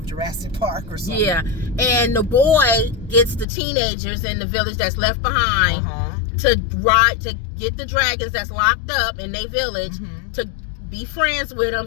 Jurassic Park or something. Yeah. And the boy gets the teenagers in the village that's left behind to get the dragons that's locked up in their village to be friends with them,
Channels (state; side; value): drops out; right; at 3.5 s